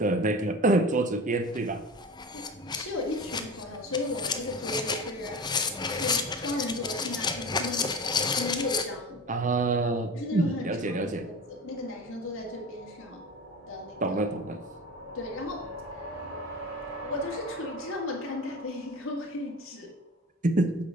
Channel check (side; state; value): both; normal; correlation 0.32